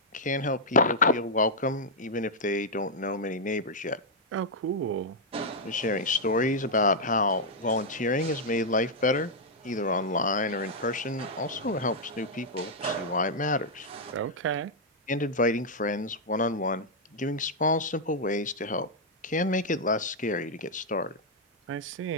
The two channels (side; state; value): both; normal; correlation -0.04